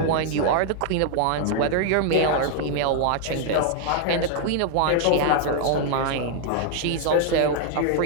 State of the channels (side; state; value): both; different; correlation 0.00